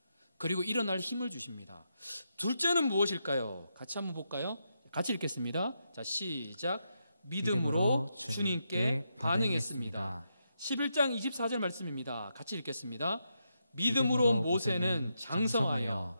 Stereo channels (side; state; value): both; inverted; correlation -0.83